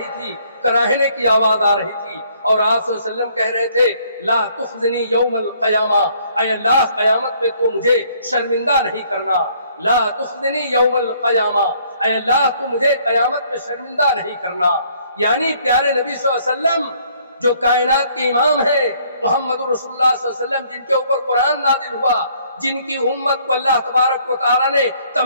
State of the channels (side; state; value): both; inverted; correlation -0.63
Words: تھی، کراہنے کی آواز آ رہی تھی، اور آپ صلی اللہ علیہ وسلم کہہ رہے تھے لا تخزنی یوم القیامہ، اے اللہ قیامت میں تو مجھے شرمندہ نہیں کرنا، لا تخزنی یوم القیامہ، اے اللہ تو مجھے قیامت میں شرمندہ نہیں کرنا۔ یعنی پیارے نبی صلی اللہ علیہ وسلم جو کائنات کے امام ہیں، محمد رسول اللہ صلی اللہ علیہ وسلم جن کے اوپر قرآن نازل ہوا، جن کی امت کو اللہ تبارک و تعالیٰ نے